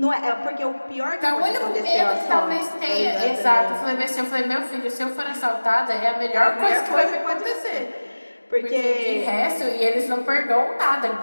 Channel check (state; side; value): inverted; both; correlation -1.00